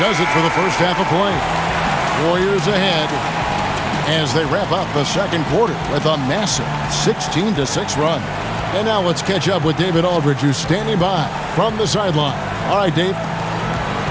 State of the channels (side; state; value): both; identical; correlation 1.00